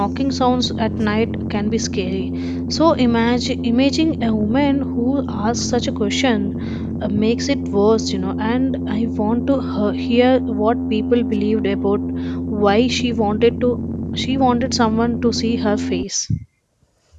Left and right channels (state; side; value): identical; both; correlation 1.00